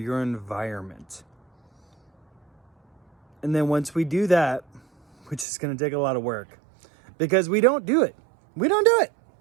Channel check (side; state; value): left; drops out; at 5.5 s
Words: environment. And then once we do that, which is going to take a lot of work, because we don't do it. We don't do it.